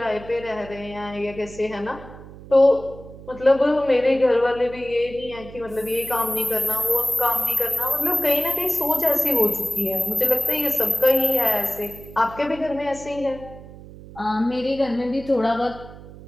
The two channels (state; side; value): noise; right; hum, 17 dB below the sound